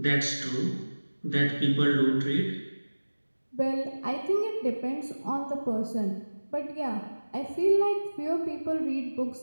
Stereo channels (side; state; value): both; inverted; correlation -1.00